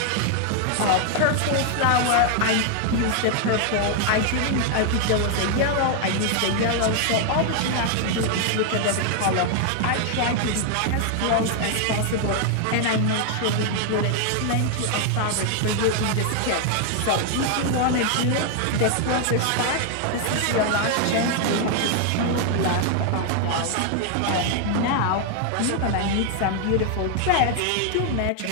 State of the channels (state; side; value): different; both; correlation 0.00